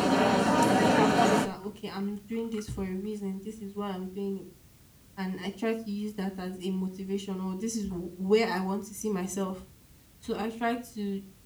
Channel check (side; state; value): both; identical; correlation 1.00